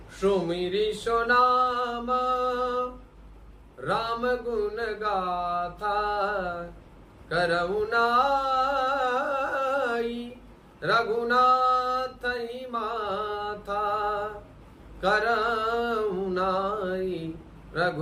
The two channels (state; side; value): identical; both; correlation 1.00